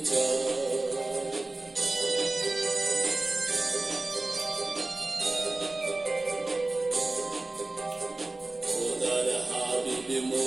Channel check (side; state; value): left; quieter; 3.1 dB